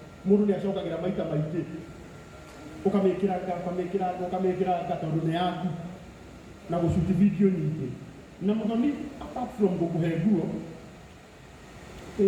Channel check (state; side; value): identical; both; correlation 1.00